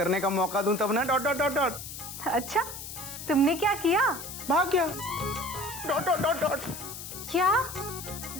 का मौका दूं तब ना। Dot dot dot dot. अच्छा, तुमने क्या किया? भाग गया। Dot dot dot dot. क्या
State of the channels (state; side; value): noise; left; hiss, 10 dB below the sound